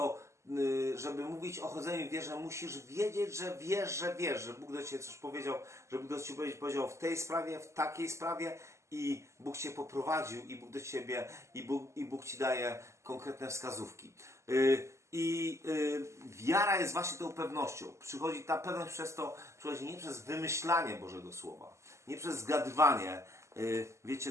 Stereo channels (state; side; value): late; left; 0.14 ms